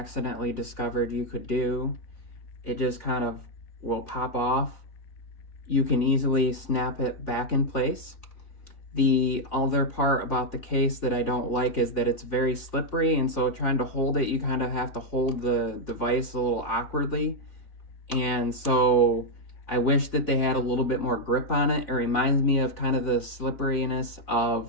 discovered you could do, it just kind of will pop off. You can easily snap it back in place. The other part about the case that I don't like is that it's very slippery, and so trying to hold it, you kind of have to hold the device a little awkwardly. And so I wish that they had a little bit more grip on it. It reminds me of kind of the slipperiness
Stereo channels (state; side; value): late; right; 3.7 ms